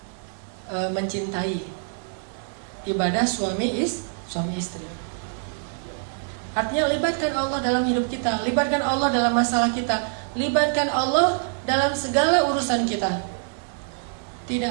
mencintai. Ibadah suami istri. Artinya libatkan Allah dalam hidup kita, libatkan Allah dalam masalah kita, libatkan Allah dalam segala urusan kita. Tidak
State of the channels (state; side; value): silent; left; 62 dB below the other